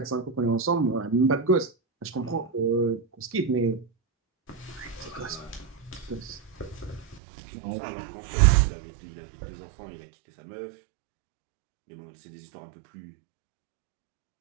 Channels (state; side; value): drops out; left; at 7.2 s